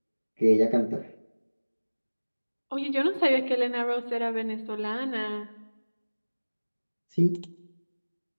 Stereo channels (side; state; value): both; inverted; correlation -1.00